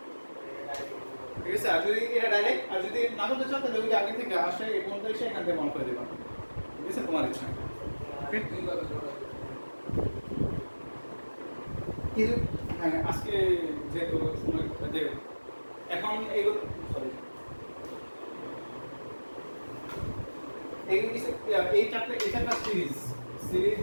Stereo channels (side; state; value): both; inverted; correlation -1.00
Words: ঠিক আছে, আর যদি এটা ডাইরেক্ট, আর যদি না করতে চাও তাহলে ওই যে আগে থেকে আসে এই পর্যন্ত এসে এখান থেকে মন করে দেবা। ঠিক আছে, তোমার ইচ্ছা। দুইভাবে জোড়া দিতে কিন্তু হ্যাঁ, আজকে যেহেতু সময় যে এখন এইগুলো সরি এই চারটা সিরিজ